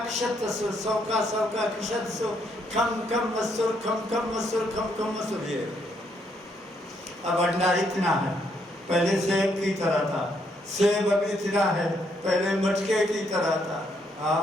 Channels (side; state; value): both; normal; correlation 0.73